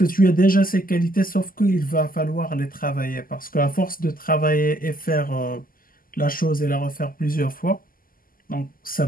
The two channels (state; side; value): late; right; 0.42 ms